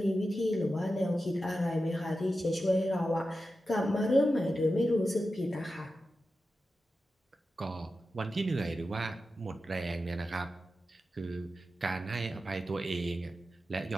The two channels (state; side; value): normal; both; correlation 0.91